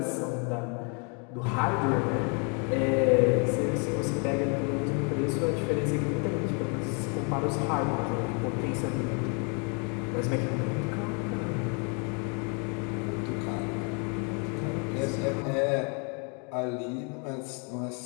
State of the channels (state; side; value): quieter; right; 36.5 dB